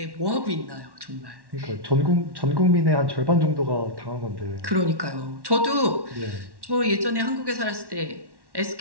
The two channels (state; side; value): late; left; 1.1 ms